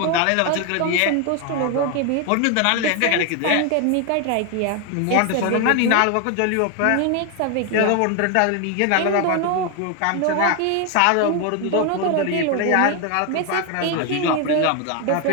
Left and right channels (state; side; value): different; both; correlation 0.01